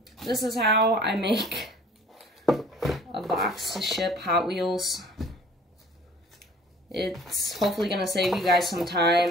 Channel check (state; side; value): normal; both; correlation 0.51